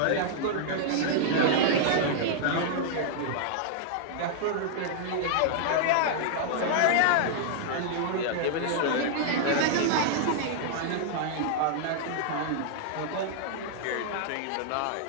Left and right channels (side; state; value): both; different; correlation -0.01